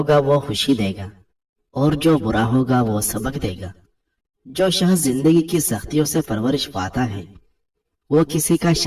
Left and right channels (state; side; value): identical; both; correlation 1.00